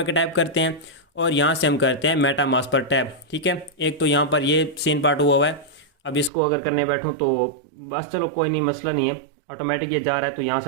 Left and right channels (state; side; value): drops out; left; at 6.3 s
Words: टैप करते हैं और यहाँ से हम करते हैं मेटामास्क पर टैप। ठीक है, एक तो यहाँ पर ये सीन पार्ट हुआ है। अब इसको अगर करने बैठूँ तो बस चलो कोई नहीं, मसला नहीं है, ऑटोमेटिक ये जा रहा है। तो यहाँ